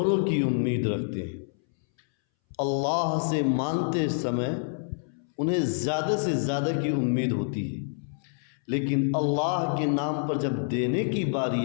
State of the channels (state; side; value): silent; right; 60 dB below the other